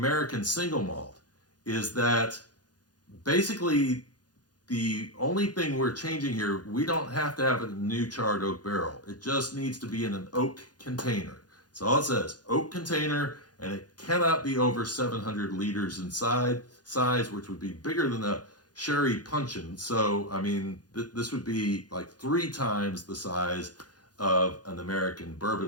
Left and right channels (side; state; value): right; late; 0.69 ms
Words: single malt is that basically the only thing we're changing here, we don't have to have a new charred oak barrel. It just needs to be in an oak container. That's all it says, oak container, and it cannot be over 700 liters in size, which would be bigger than a sherry puncheon. So, I mean, this would be like 3 times the size of an American